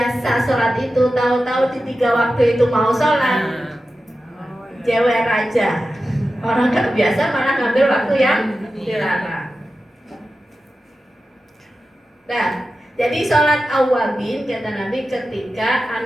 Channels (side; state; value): both; normal; correlation 0.93